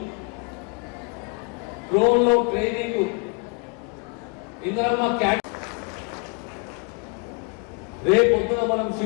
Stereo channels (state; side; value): quieter; right; 34.2 dB